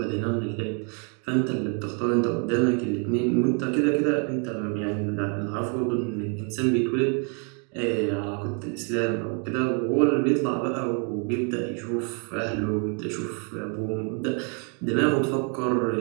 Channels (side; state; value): left; quieter; 38.1 dB